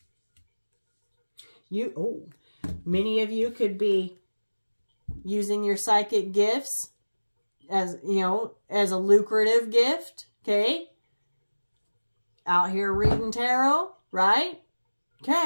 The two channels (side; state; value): both; inverted; correlation -1.00